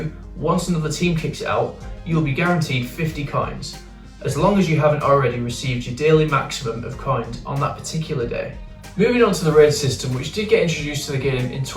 once another team kicks it out, you will be guaranteed 50 coins, as long as you haven't already received your daily maximum of coins on that particular day. Moving on to the raid system, which did get introduced to the game in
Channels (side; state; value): both; identical; correlation 1.00